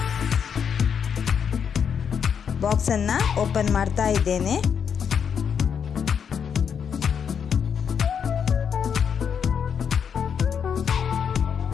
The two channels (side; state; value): right; quieter; 7.3 dB